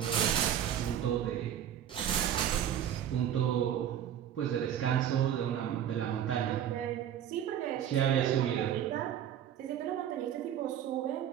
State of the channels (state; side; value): quieter; left; 10.1 dB